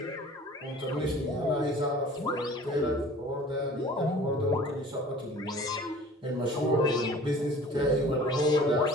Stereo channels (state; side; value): normal; both; correlation 0.46